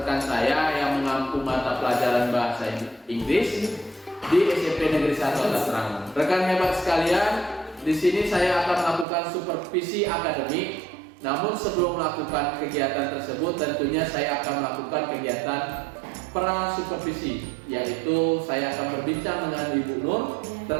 saya yang mengampu mata pelajaran bahasa Inggris di SMP Negeri 1 Atap Serangun. Rekan hebat sekalian, di sini saya akan melakukan supervisi akademik. Namun sebelum melakukan kegiatan tersebut, tentunya saya akan melakukan kegiatan pra supervisi, yaitu saya akan berbincang dengan Ibu Nur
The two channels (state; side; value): drops out; left; at 9.1 s